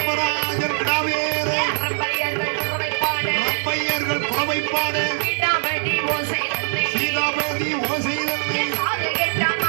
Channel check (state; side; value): silent; left; 61 dB below the other